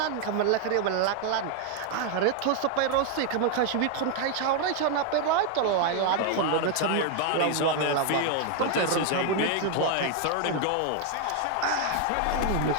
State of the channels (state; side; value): different; both; correlation 0.00